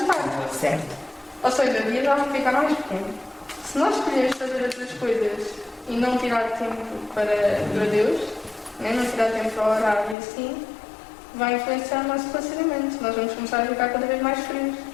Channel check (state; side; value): drops out; right; at 10.2 s